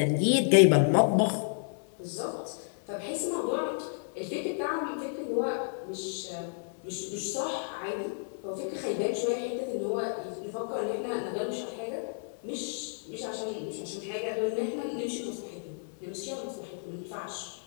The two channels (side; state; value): right; silent; digital silence